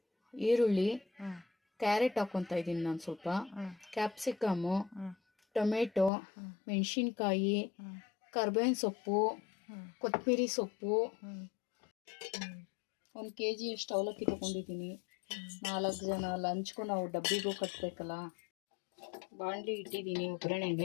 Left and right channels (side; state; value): right; drops out; at 6.1 s